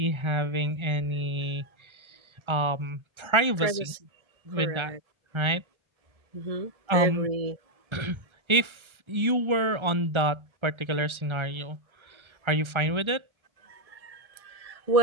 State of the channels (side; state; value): left; late; 1.3 ms